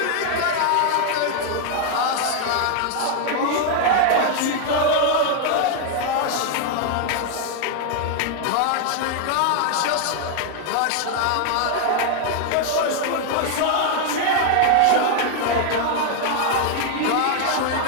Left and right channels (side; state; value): both; different; correlation 0.00